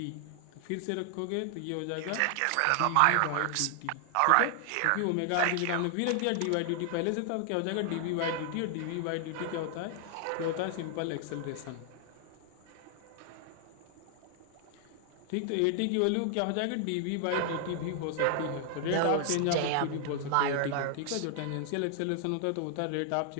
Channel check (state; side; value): different; both; correlation 0.00